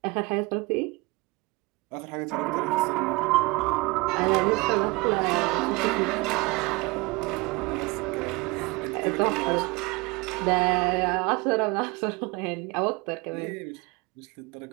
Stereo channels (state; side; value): quieter; left; 24.7 dB